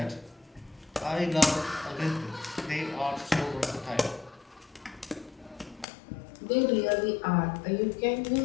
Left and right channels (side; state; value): right; drops out; at 5.9 s